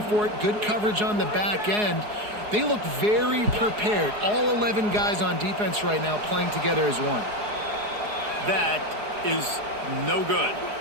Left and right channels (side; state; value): left; late; 4.8 ms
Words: for it. Good coverage on the back end. They look very prepared. All 11 guys on defense right now playing together as one. That is no good.